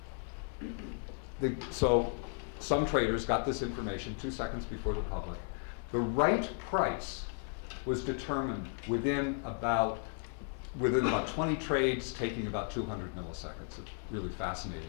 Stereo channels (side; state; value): right; silent; 55 dB below the other